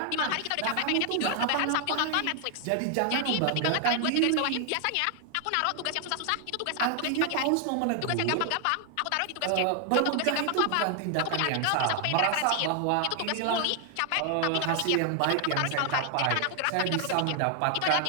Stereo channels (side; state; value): both; different; correlation 0.00